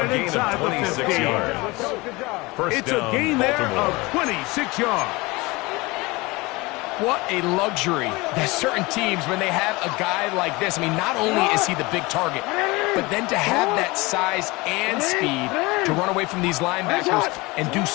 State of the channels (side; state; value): right; quieter; 23.4 dB